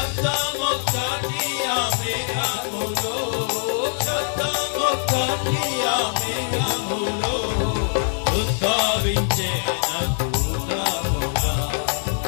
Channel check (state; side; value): silent; right; 61 dB below the other